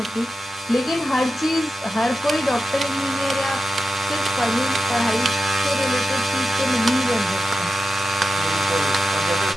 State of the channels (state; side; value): normal; both; correlation 0.91